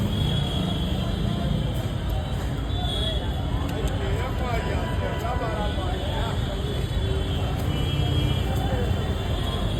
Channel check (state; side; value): identical; both; correlation 1.00